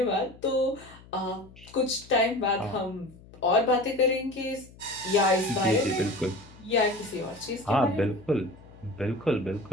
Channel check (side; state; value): left; noise; hum, 22 dB below the sound